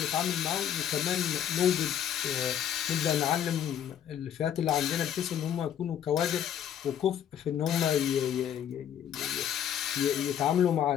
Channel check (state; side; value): quieter; right; 9.9 dB